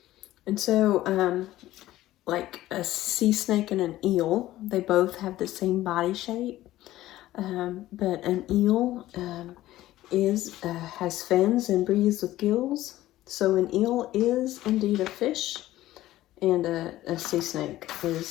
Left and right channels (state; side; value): quieter; right; 15.2 dB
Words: And so, like a sea snake and an eel, they both have the same body shape, but an eel has fins and breathes with gills. So an eel is indeed a fish, and a sea snake